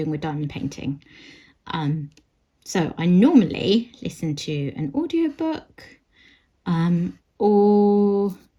with diamond painting. So I normally listen to an audiobook, or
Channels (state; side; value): identical; both; correlation 1.00